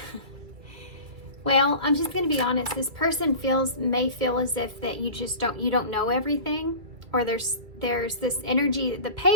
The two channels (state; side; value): late; left; 2.3 ms